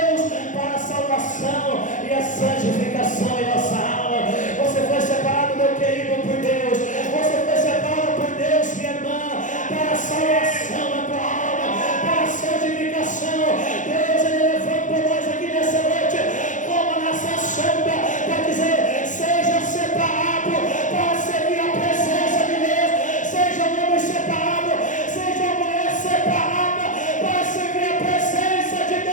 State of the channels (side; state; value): right; late; 0.37 ms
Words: para a salvação e a santificação em nossa alma. Você foi separado, meu querido, por Deus. Você foi separado por Deus, minha irmã, para a salvação da tua alma, para a santificação. Deus, Ele levantou nós aqui nessa noite como a nação santa para dizer: seja separado para servir a presença de Deus, seja um homem separado, seja uma mulher separada para servir a presença de